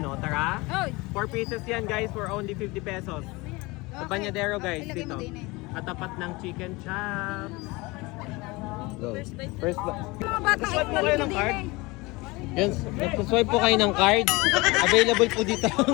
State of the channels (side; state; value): right; quieter; 23.6 dB